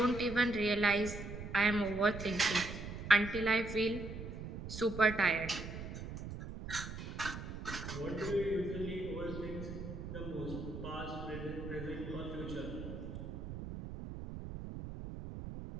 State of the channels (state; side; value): noise; right; rumble, 8 dB below the sound